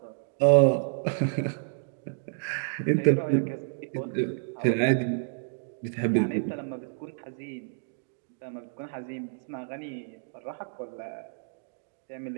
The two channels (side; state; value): left; silent; digital silence